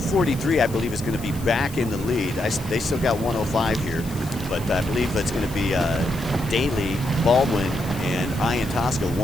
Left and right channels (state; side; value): noise; left; hiss, 17 dB below the sound